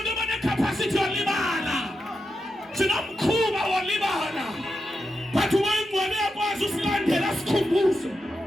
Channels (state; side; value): normal; both; correlation 0.88